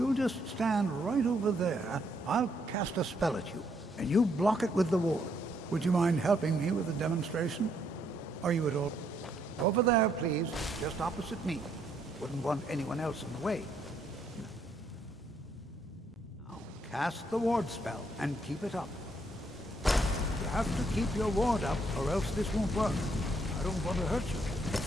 just stand right over there, I'll cast a spell at you, and you block it with the ward. Would you mind helping me with the demonstration? Are you at all? Over there, please, just opposite me. Wouldn't want anyone else in the way. Now, cast the ward spell, and keep it up. You have to keep your ward up, or else this won't work. I don't want to hurt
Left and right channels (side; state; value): both; normal; correlation 0.72